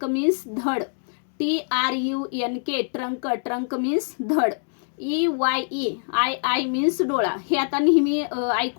means धड. TRUNK ट्रंक, ट्रंक मीन्स धड. EYE आय मीन्स डोळा. हे आता नेहमी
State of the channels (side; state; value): right; silent; 62 dB below the other